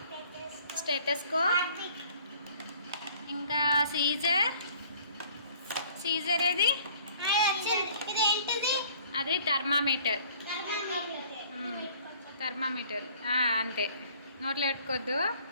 స్టెటస్కోప్ ఇంకా సీజర్ ఏది? అది థర్మామీటర్. అంతే, నోట్లో పెట్టుకోవద్దు.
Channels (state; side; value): inverted; both; correlation -0.54